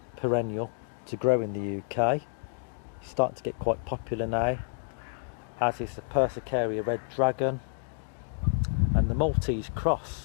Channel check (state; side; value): silent; right; digital silence